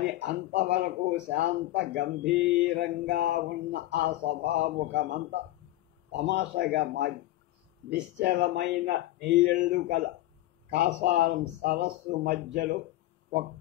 అంతవరకు శాంత గంభీరంగా ఉన్న ఆ సభాముఖమంతా తమాషగా మారి నిశ్చలమైన నీళ్లు కల కాసారం సరస్సు మధ్యలో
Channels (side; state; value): right; quieter; 15.9 dB